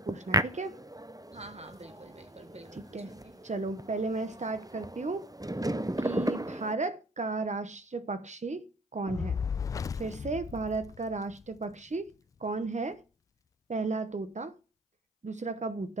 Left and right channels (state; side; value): normal; both; correlation 0.50